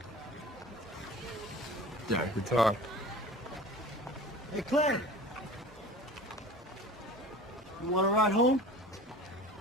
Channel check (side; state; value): both; normal; correlation 0.40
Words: Yeah, I could talk. Hey, Clay! You want to ride home?